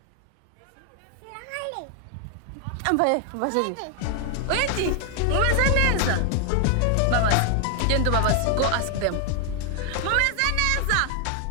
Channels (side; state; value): both; different; correlation 0.00